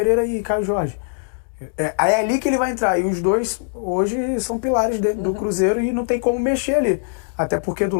e Caio Jorge. É ali que ele vai entrar. E os dois hoje são pilares dentro do Cruzeiro e não tem como mexer ali. Até porque do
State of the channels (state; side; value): silent; right; digital silence